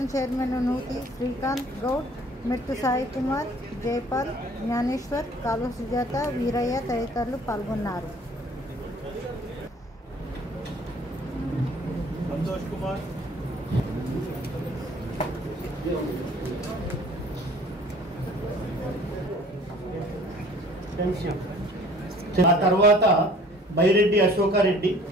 చైర్మన్ నూతి శ్రీకాంత్ గౌడ్, మెట్టు సాయి కుమార్, జైపాల్, జ్ఞానేశ్వర్, కాలువ సుజాత, వీరయ్య తదితరులు పాల్గొన్నారు. ఆ తర్వాత బైరెడ్డి అశోకారెడ్డి,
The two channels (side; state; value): both; normal; correlation 0.52